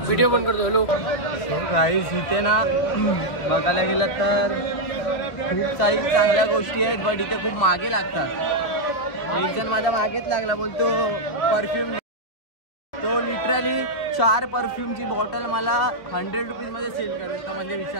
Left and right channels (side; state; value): right; late; 2.5 ms